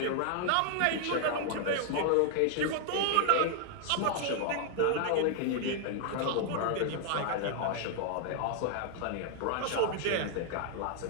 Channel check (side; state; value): both; different; correlation 0.00